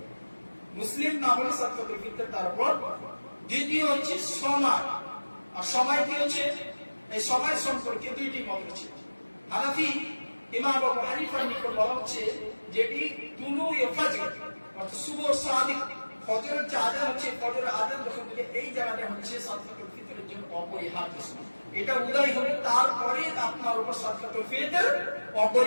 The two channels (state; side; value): inverted; both; correlation -1.00